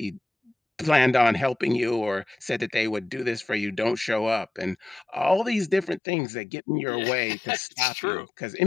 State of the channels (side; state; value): right; drops out; at 6.0 s